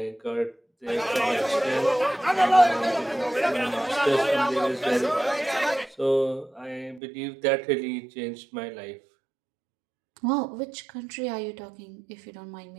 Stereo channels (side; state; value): left; drops out; at 7.0 s